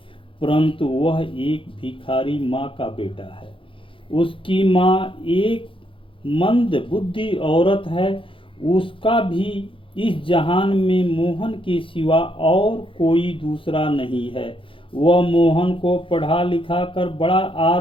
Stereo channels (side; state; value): right; late; 0.25 ms